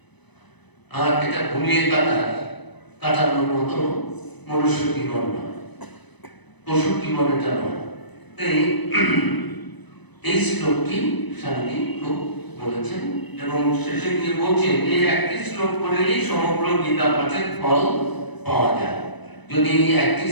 আর এটা ঘুমিয়ে কাটানোর মতো মনুষ্য জীবন নয়, পশু জীবন এটা নয়। এই শ্লোকটি স্বামীজি খুব বলেছেন, এবং শেষে গিয়ে বলছেন এই একটি শ্লোক পড়লেই সমগ্র গীতা পাঠের ফল পাওয়া যায়। যদি এই একটি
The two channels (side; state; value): right; late; 1.0 ms